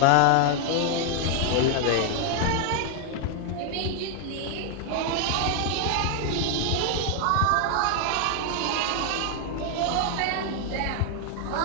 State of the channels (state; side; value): different; both; correlation 0.00